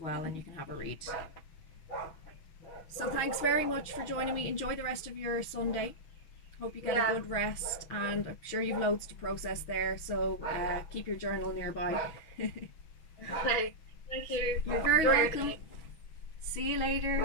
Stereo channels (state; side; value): late; right; 6.3 ms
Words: and you can have a read. So thanks very much for joining me. Enjoy the rest of your Sunday. Hope you get a good rest, and I'm sure you've loads to process there, so keep your journal nearby. Okay, thank you. You're very welcome. See you later.